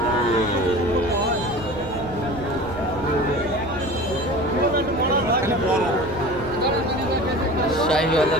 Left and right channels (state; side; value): noise; right; rumble, 14 dB below the sound